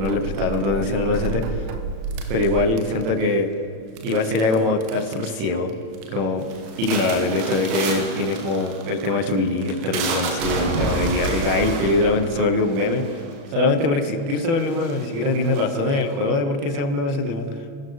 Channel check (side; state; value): left; late; 36 ms